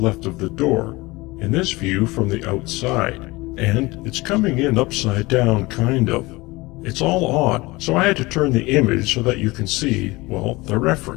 of the door, in this view from the outside, and it's coming in upside down kind of. It's all odd, so I had to turn the image so that you can see, well, the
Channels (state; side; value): quieter; right; 22.1 dB